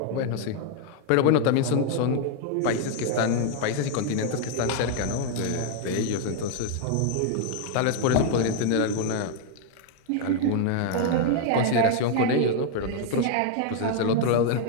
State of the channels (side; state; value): both; different; correlation 0.00